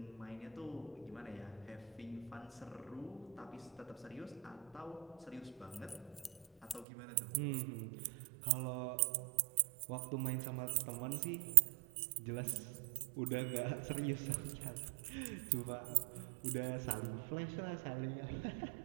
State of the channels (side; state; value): left; drops out; at 6.9 s